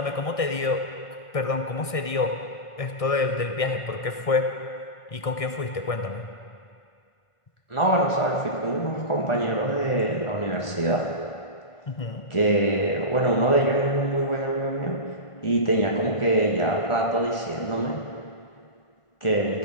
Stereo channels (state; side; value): late; right; 1.6 ms